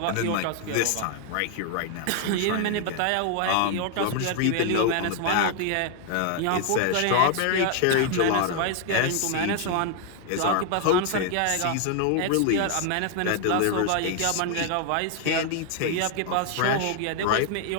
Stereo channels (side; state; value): both; different; correlation 0.00